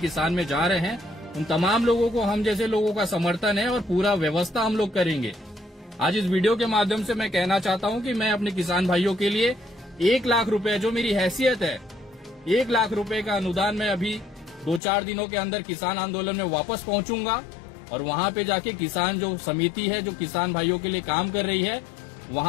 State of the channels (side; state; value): right; drops out; at 14.8 s